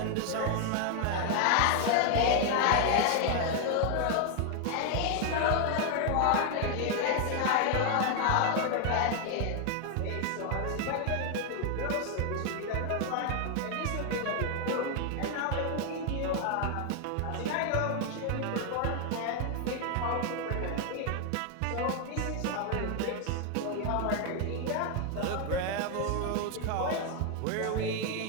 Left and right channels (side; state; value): both; different; correlation 0.00